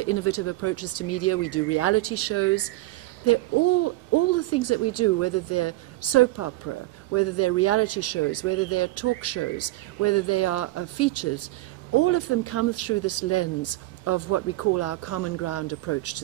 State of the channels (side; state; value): left; quieter; 18.4 dB